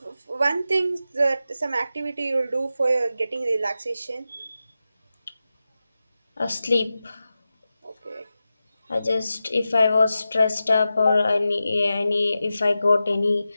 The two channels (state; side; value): inverted; both; correlation -0.92